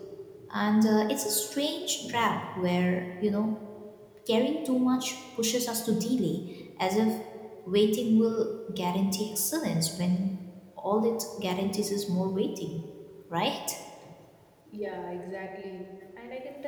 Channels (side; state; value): both; identical; correlation 1.00